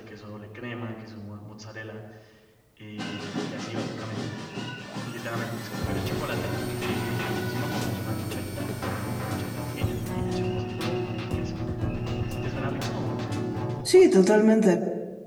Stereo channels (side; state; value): both; identical; correlation 1.00